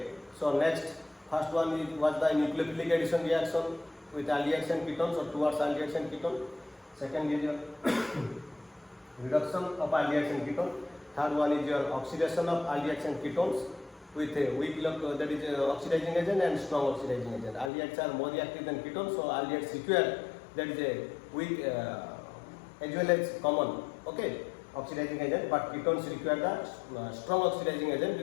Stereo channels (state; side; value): drops out; right; at 17.7 s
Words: so next, first one was the nucleophilic addition reaction with aldehydes and ketones or towards aldehydes and ketone. Second is your reduction of aldehydes and ketone. Third one is your oxidation of aldehydes and ketones with a weak that is oxidizing agent and strong oxidizing agent. Aldehydes are more reactive than ketones, so aldehydes require, that is a weak as well as common, okay, oxidizing agent, but ketones require the strong oxidizing agent